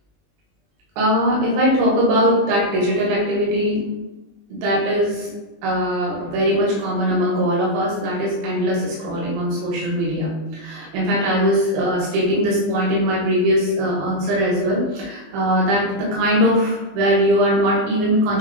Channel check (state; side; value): late; left; 20 ms